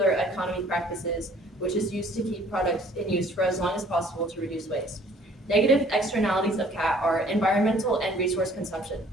economy practices, which is used to keep products in use for as long as possible to reduce waste. Negative externalities of CAT are environmental and resource consumption.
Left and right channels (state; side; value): normal; both; correlation 0.56